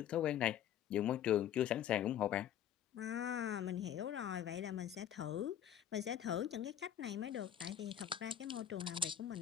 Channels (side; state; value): right; quieter; 10.4 dB